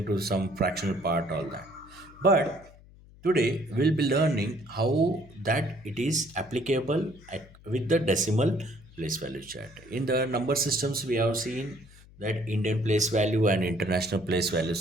to some fractional part, all that. But today we'll be learning how that it is applicable with the decimal place value chart. In the number systems we have seen that Indian place value and international place value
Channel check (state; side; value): noise; left; hum, 23 dB below the sound